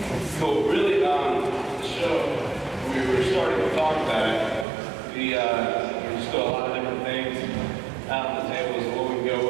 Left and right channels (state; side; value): drops out; left; at 4.7 s